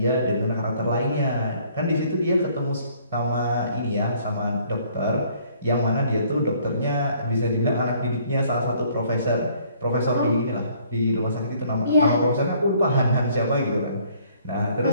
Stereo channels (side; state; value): both; inverted; correlation -0.61